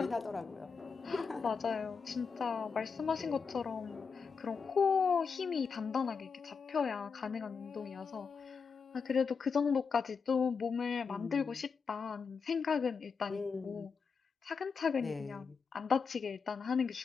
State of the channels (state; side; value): quieter; right; 5.5 dB